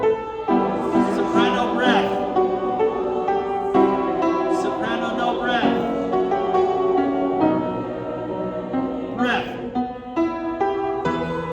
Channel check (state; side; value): identical; both; correlation 1.00